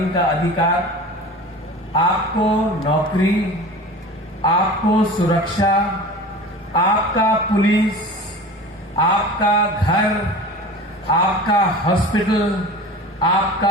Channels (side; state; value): both; normal; correlation 0.37